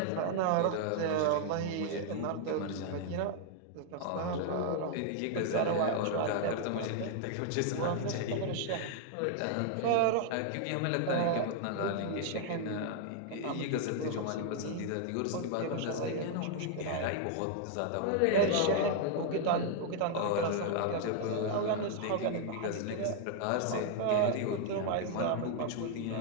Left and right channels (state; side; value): different; both; correlation 0.00